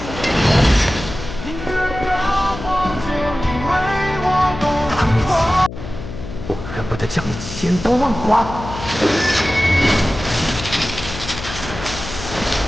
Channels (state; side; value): noise; left; hum, 10 dB below the sound